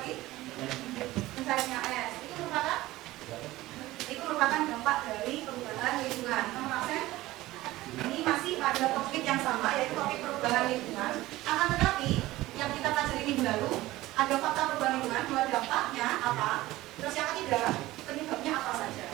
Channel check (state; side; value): quieter; left; 17.4 dB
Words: Mencairnya es. Itu merupakan dampak dari perubahan lingkungan. Nomor absen, ini masih pada topik yang sama, yaitu topik perubahan lingkungan. Akan tetapi yang kita pelajari minggu lalu ada fakta perubahan lingkungan, dua dampaknya apa, terus yang ketiga penyebabnya apa saja.